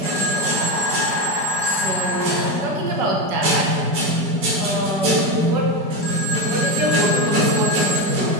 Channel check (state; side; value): late; left; 4.9 ms